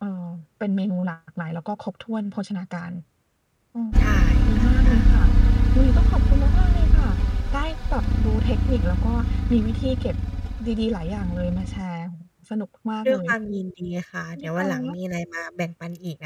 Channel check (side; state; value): both; identical; correlation 1.00